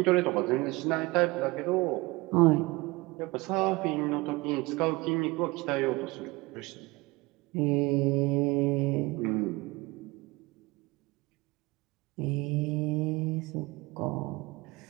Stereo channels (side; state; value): left; quieter; 22.8 dB